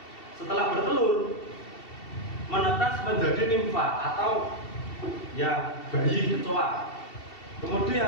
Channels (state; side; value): late; right; 2.7 ms